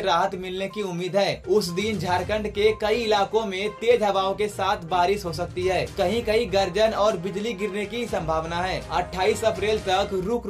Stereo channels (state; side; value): identical; both; correlation 1.00